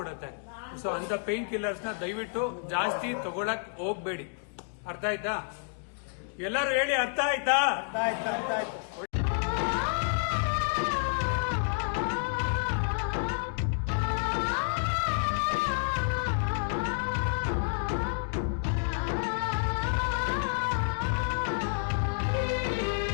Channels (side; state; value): right; silent; digital silence